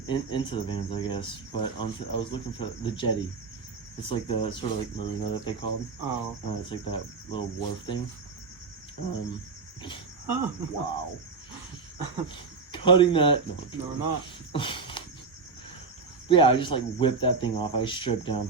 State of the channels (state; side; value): quieter; left; 4.6 dB